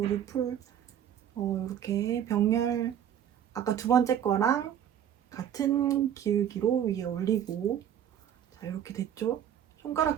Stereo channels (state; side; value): quieter; left; 9.8 dB